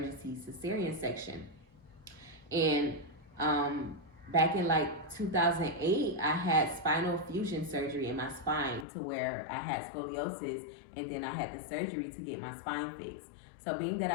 cesarean section. And back in like 2008, I had spinal fusion surgery in my spine to where I had scoliosis, and then I had the surgery to get my spine fixed. So being that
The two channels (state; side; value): drops out; right; at 8.8 s